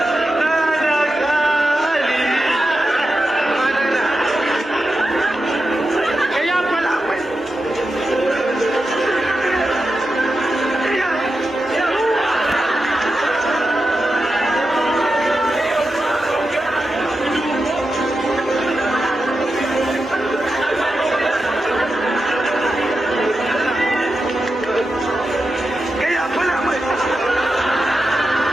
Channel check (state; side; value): normal; both; correlation 0.90